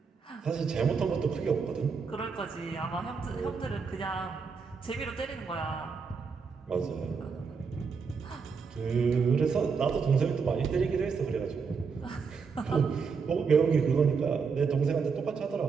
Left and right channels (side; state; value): left; quieter; 5.4 dB